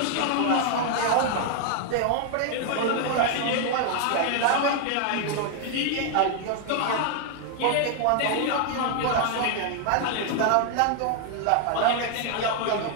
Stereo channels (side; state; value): both; different; correlation 0.00